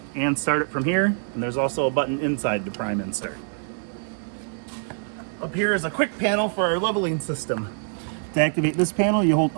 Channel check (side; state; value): left; silent; 62 dB below the other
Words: and start it from here. And there's also a button inside to prime and start. Up here is a quick panel for our leveling system. To activate this panel, you hold